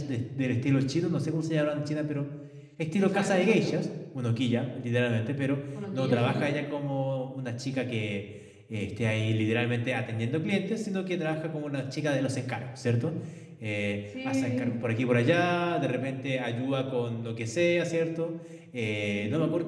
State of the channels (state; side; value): identical; both; correlation 1.00